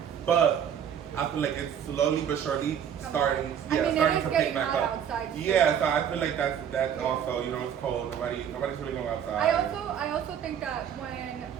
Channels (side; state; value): left; quieter; 8.7 dB